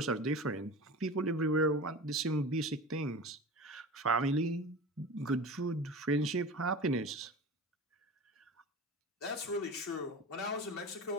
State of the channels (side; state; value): both; normal; correlation 0.32